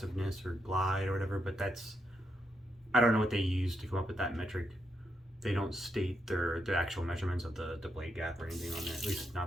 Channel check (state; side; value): normal; both; correlation 0.82